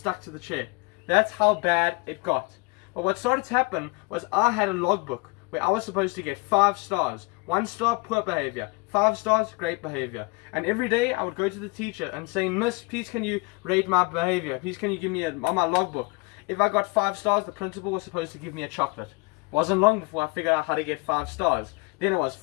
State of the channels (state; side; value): quieter; right; 28.9 dB